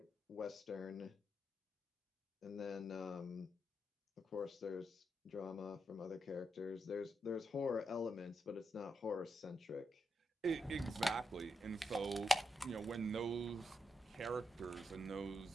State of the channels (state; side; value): normal; both; correlation 0.83